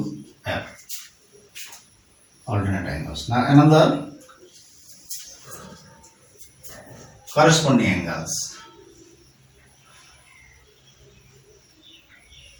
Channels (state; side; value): identical; both; correlation 1.00